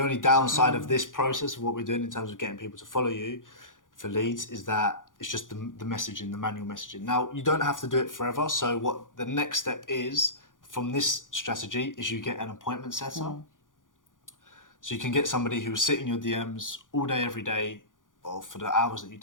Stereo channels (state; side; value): late; right; 0.88 ms